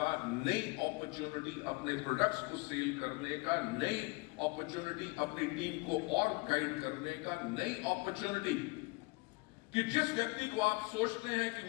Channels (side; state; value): right; quieter; 26.7 dB